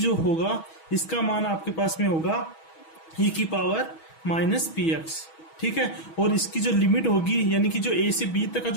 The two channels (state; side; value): late; right; 6.2 ms